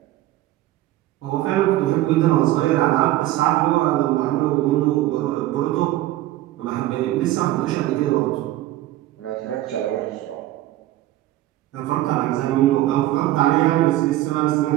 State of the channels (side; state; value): left; quieter; 15.3 dB